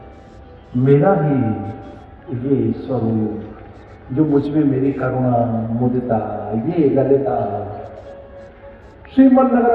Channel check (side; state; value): both; identical; correlation 1.00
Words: मेरा ही ये स्वरूप, जो मुझ में मेरी करुणा मुदिता, ये ललिता श्रीमन